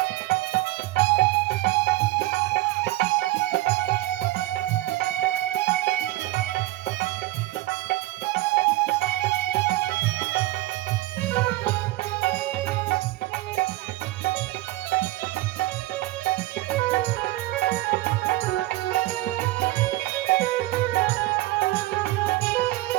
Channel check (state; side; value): quieter; left; 18.0 dB